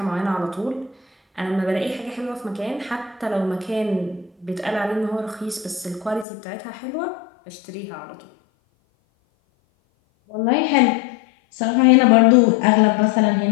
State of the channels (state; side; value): drops out; right; at 6.2 s